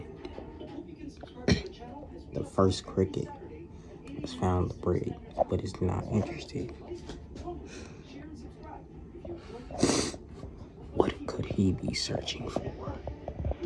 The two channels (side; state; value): both; identical; correlation 1.00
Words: The first cricket has found the bread, but is not interested. What could he be searching for?